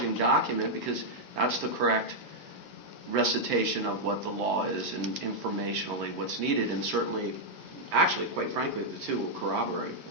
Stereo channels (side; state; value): right; late; 3.0 ms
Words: document, because that's the correct recitation of what the law is and informationally what's needed, and certainly, actually, quite frankly, the two will corroborate